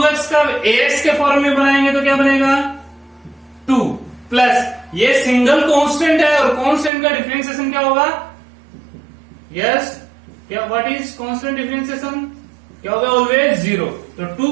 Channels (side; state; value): left; drops out; at 6.9 s